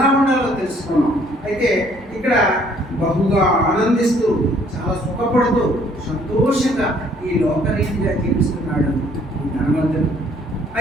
ఉండాలో తెలుసుకున్నాం. అయితే ఇక్కడ బహుగా ఆనందిస్తూ, చాలా సుఖపడుతూ, సంతోషంగా ఈ లోకరీతిగా జీవిస్తున్నాడు ఈ ధనవంతుడు.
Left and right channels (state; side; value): normal; both; correlation 0.62